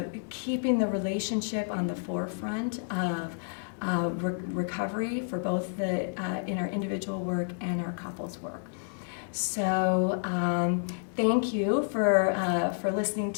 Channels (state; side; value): silent; right; digital silence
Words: keeping the relationship on the forefront of recovery for both in our individual work and our couples work. So thank you for listening